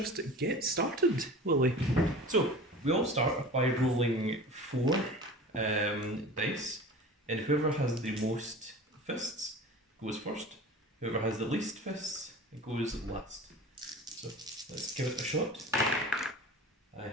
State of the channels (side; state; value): both; normal; correlation 0.37